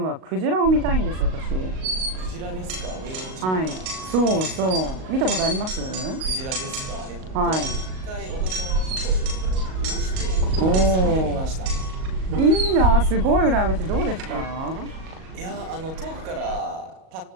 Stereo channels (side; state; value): left; late; 38 ms